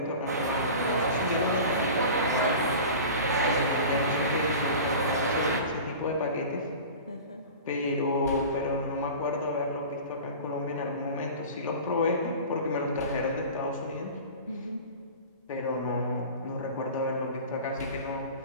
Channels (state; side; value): inverted; both; correlation -0.36